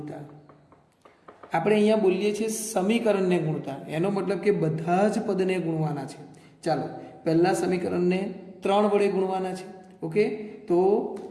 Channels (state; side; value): identical; both; correlation 1.00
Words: આપણે અહીંયા બોલીએ છીએ સમીકરણને ગુણતા, એનો મતલબ કે બધા જ પદને ગુણવાના છે. ચાલો, પહેલા સમીકરણને 3 વડે ગુણવાના છે. ઓકે, તો